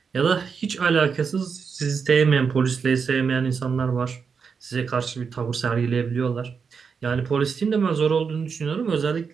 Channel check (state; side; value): quieter; left; 5.9 dB